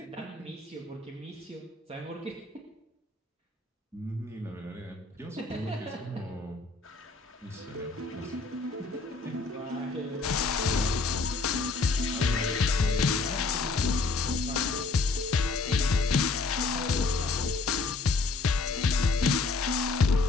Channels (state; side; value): quieter; right; 3.9 dB